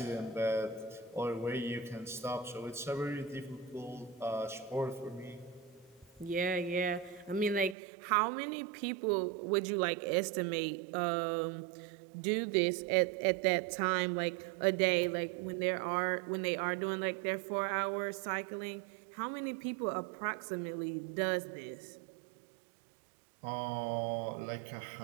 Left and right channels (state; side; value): drops out; left; at 7.8 s